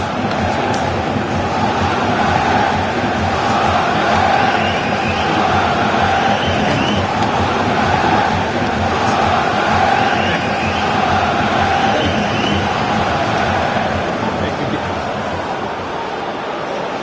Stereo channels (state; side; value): identical; both; correlation 1.00